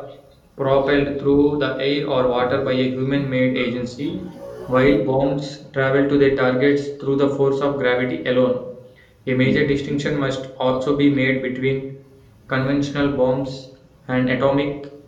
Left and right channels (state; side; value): identical; both; correlation 1.00